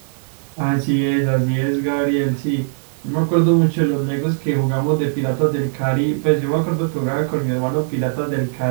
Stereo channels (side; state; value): left; silent; digital silence